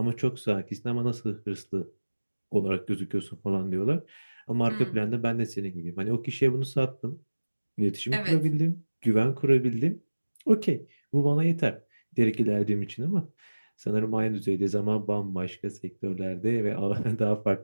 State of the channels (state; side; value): inverted; both; correlation -1.00